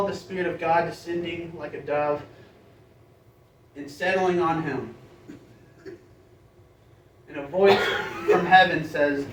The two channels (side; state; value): both; identical; correlation 1.00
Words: the Spirit of God descending like a dove and settling on him. And a voice from heaven says,